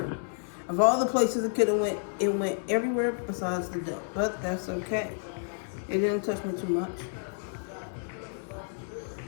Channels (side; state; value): right; silent; digital silence